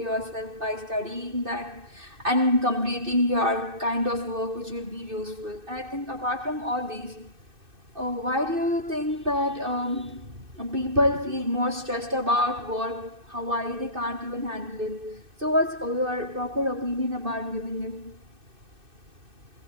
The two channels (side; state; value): left; late; 2.6 ms